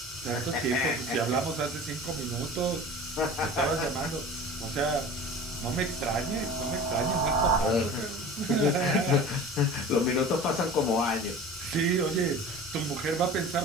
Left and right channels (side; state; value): both; normal; correlation 0.38